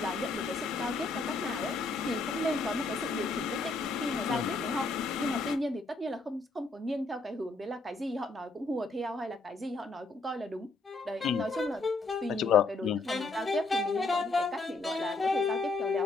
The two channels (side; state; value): right; quieter; 3.5 dB